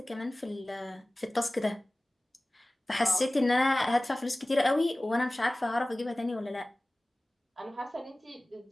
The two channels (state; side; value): normal; both; correlation 0.98